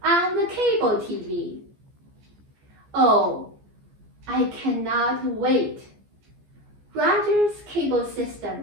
on the cable TV. Oh, I cannot wait. Rogers Cable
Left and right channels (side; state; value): left; late; 14 ms